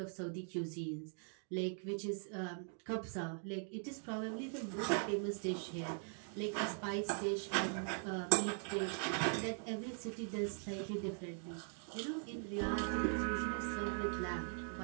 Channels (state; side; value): silent; left; 50 dB below the other